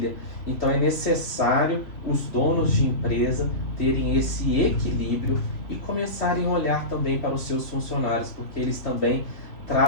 Então é necessário os donos de empresa terem esse equilíbrio e começarem a olhar também para os seus funcionários, porque eles também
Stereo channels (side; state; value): right; late; 3.1 ms